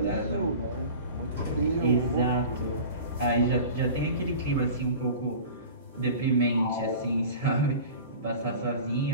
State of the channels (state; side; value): inverted; both; correlation -0.38